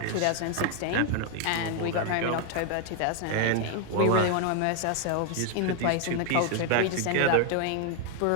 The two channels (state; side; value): different; both; correlation 0.00